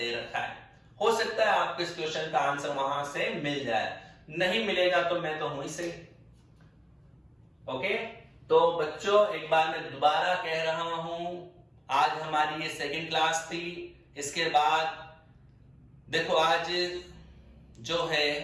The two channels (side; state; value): both; identical; correlation 1.00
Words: रखा है। हो सकता है आपको इस क्वेश्चन का आंसर वहां से मिल जाए, नहीं मिलेगा तो मैं तो हूं ही सही। ओके, तो बच्चों एक बार मैं दोबारा कह रहा हूं, आज हमारी ये सेकंड क्लास थी। इसके बाद देखो आज जो है